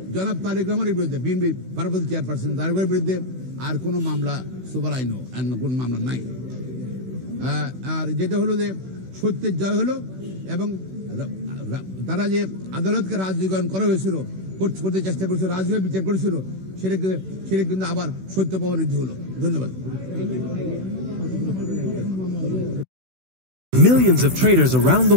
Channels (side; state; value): left; late; 16 ms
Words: জনাব তারেক রহমানের বিরুদ্ধে, বিএনপি ভারপ্রাপ্ত চেয়ারপারসন তারেকের বিরুদ্ধে আর কোনো মামলা সুপার আইনও কোন মামলা নাই। আর যেটা হলো যে সত্যের জয় হলো এবং তারা যে আদালতকে রাজনীতিকরণ করা হয়েছিল, করতে চেষ্টা করেছিল, রাজনীতি বিচার করেছিল, সেটা কিন্তু আবার সত্য প্রমাণিত হলো। ধন্যবাদ। Millions of traders around